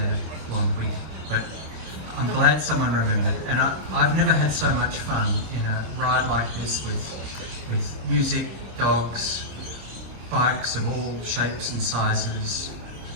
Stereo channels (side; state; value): left; late; 26 ms